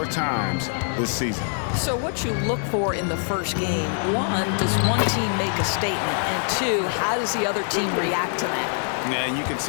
times this season. So what you look for in the first game, 1, does one team make a statement? And 2, how does the other team react to that? Yeah, and you can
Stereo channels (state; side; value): silent; right; 57 dB below the other